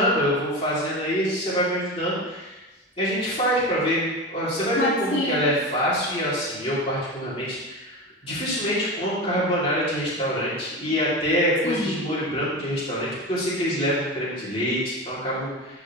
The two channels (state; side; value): normal; both; correlation 0.24